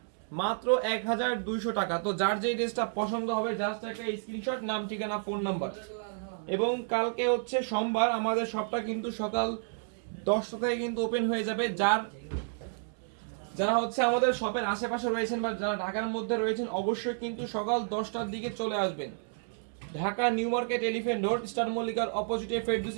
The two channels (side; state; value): left; silent; digital silence